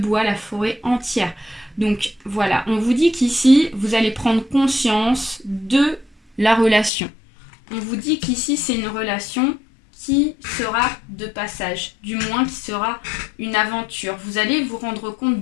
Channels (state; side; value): drops out; right; at 6.9 s